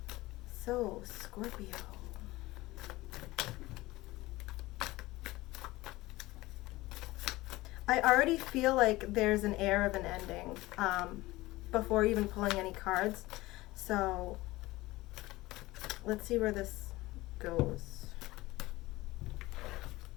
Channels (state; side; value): quieter; right; 19.3 dB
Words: So, Scorpio. I already feel like there's an air of an ending before even pulling any cards. So, let's see where this goes.